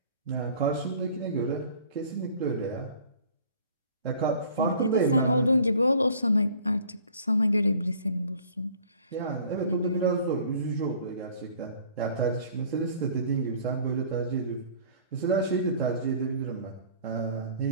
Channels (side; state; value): both; inverted; correlation -0.51